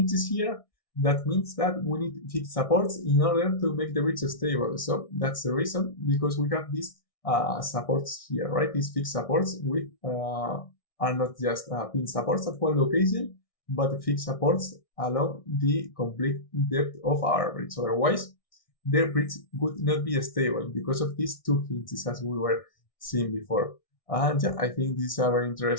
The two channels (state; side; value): late; right; 1.6 ms